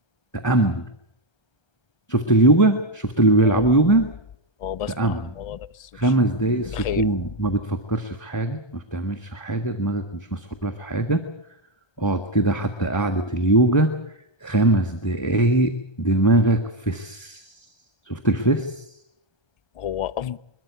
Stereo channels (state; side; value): late; right; 1.3 ms